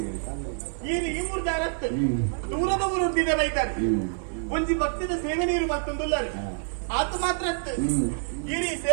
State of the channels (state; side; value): silent; left; 58 dB below the other